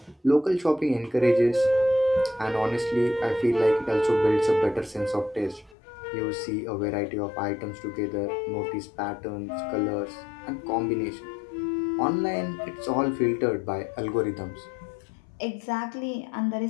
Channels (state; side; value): drops out; right; at 5.8 s